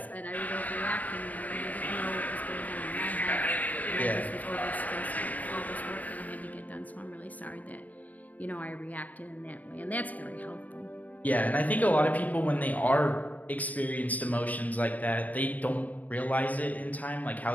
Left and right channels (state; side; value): late; right; 0.076 ms